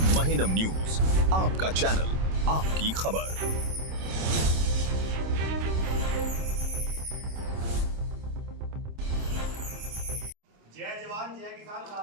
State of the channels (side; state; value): left; late; 26 ms